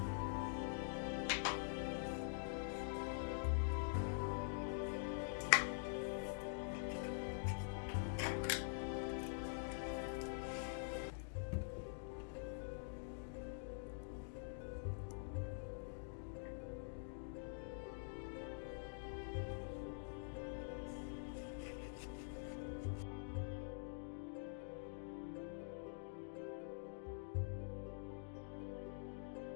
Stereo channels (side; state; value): right; silent; digital silence